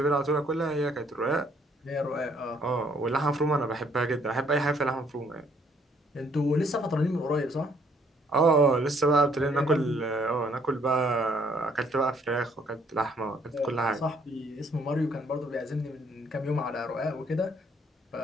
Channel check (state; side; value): normal; both; correlation 0.65